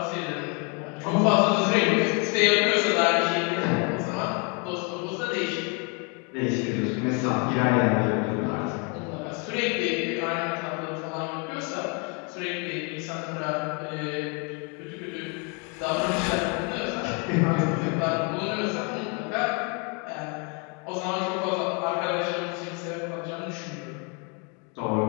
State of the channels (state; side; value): quieter; right; 34.0 dB